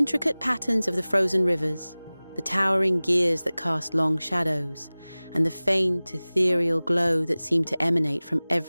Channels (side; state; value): both; inverted; correlation -0.99